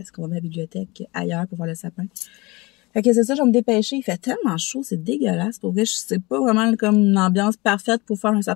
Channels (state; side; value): quieter; right; 23.9 dB